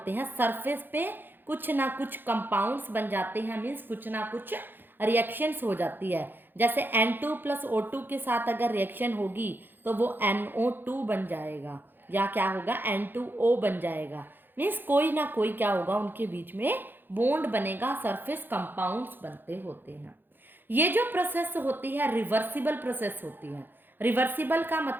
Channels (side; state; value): left; late; 0.095 ms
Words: हैं, सरफेस पे कुछ ना कुछ कंपाउंड्स बन जाते हैं, मीन्स कुछ ना कुछ रिएक्शंस हो जाती है। जैसे N2 + O2 के साथ अगर रिएक्शन होगी तो वो NO2 बन जाएगा, या क्या होगा N2O बन जाएगा, मीन्स कोई ना कोई क्या होगा उनके बीच में बॉन्ड बनेगा, सरफेस कंपाउंड्स बनते होते हैं। ये जो प्रोसेस होती है रिवर्सिबल प्रोसेस होती है। रिवर्सिबल का